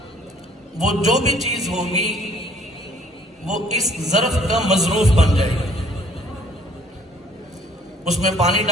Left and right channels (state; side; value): normal; both; correlation 0.59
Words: وہ جو بھی چیز ہوگی وہ اس ظرف کا مظروف بن جائے گی۔ اس میں پانی